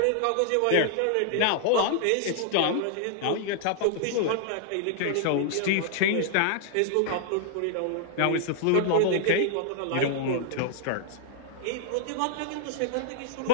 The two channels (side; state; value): both; different; correlation -0.01